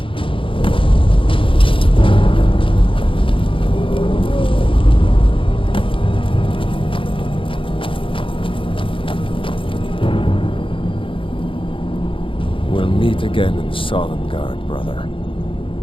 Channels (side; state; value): right; late; 0.25 ms